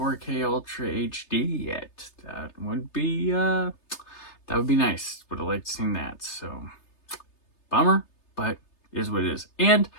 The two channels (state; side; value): late; right; 3.3 ms